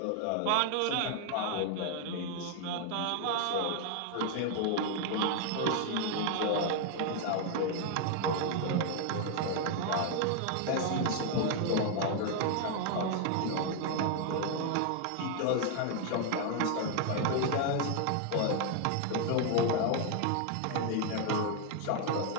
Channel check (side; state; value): both; different; correlation 0.01